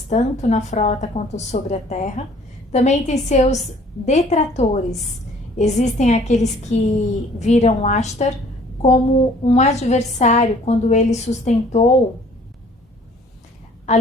tanto na frota quanto sobre a terra, também tem seus detratores. Existem aqueles que viram Ashtar como um adversário quando ele sustentou a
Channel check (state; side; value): normal; both; correlation 0.56